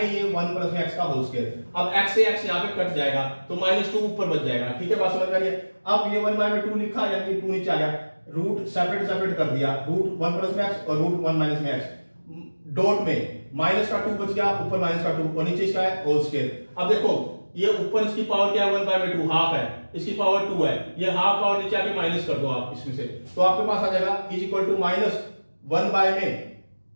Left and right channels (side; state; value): both; inverted; correlation -1.00